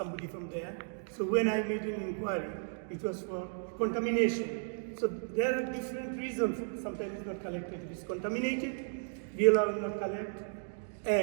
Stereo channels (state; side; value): silent; left; digital silence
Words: from there. So when I made an inquiry, it was for contamination. So there are different reasons. Sometimes it's not collected. If it's contaminated, we allow it not collect.